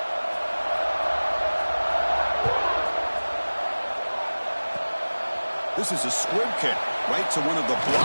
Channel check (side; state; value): both; inverted; correlation -1.00